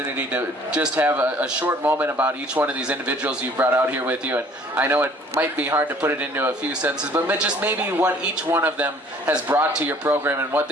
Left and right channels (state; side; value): normal; both; correlation 0.55